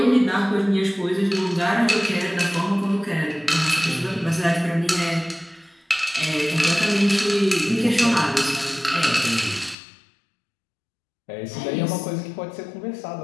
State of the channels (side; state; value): right; drops out; at 9.8 s